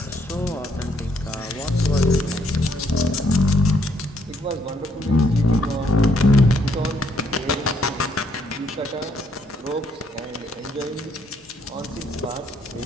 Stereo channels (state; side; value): normal; both; correlation 0.70